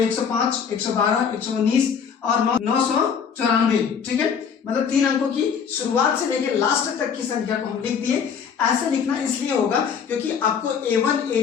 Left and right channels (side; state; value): right; quieter; 6.9 dB